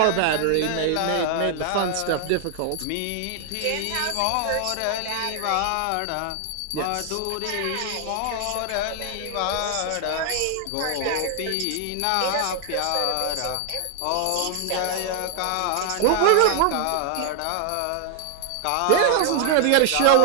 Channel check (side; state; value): both; different; correlation 0.00